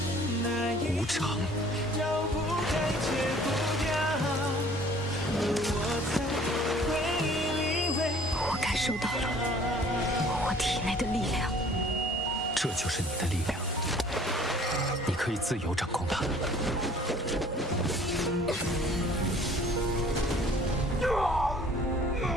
无常。我感受到了我体内的力量，这就是你的力量，你可以自由掌控它。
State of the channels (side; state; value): both; normal; correlation 0.53